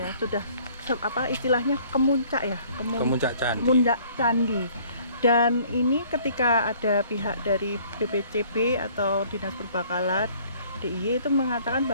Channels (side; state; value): both; inverted; correlation -0.57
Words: sudah istilahnya kemuncak ya, Kemuncak candi. kemuncak candi. Dan ini ketika ada pihak dari BPCB atau Dinas Perbakalan DIY itu mengatakan